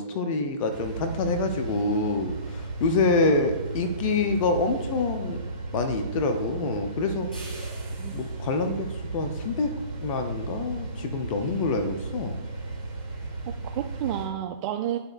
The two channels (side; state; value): both; inverted; correlation -0.38